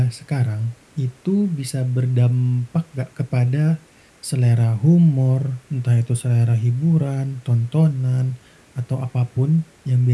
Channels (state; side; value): identical; both; correlation 1.00